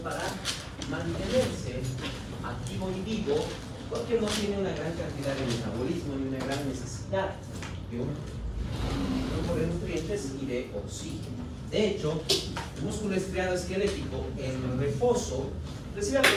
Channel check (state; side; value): identical; both; correlation 1.00